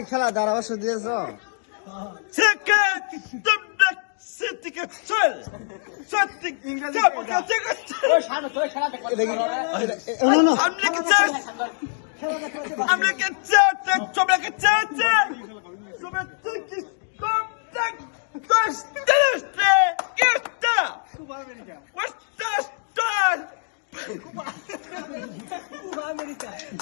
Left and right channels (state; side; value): silent; right; digital silence